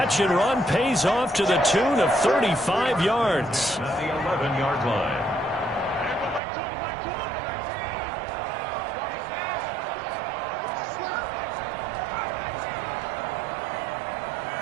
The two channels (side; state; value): left; drops out; at 6.4 s